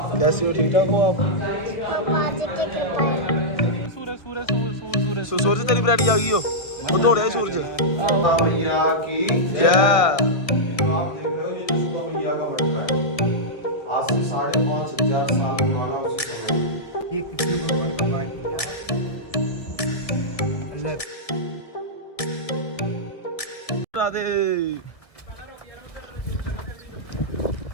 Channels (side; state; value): right; late; 1.7 ms